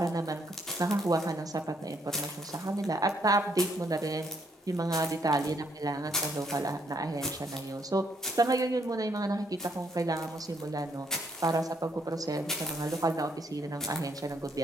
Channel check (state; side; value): normal; both; correlation 0.72